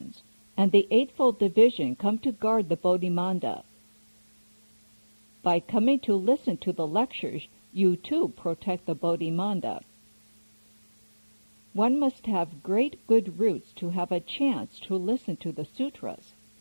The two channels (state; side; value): inverted; both; correlation -1.00